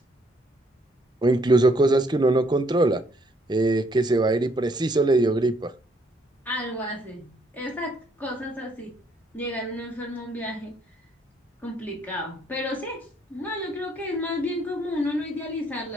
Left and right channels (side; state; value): both; normal; correlation 0.67